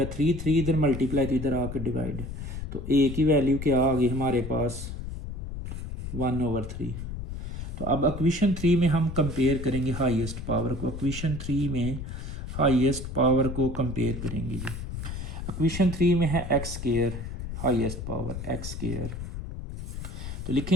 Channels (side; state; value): left; noise; rumble, 7 dB below the sound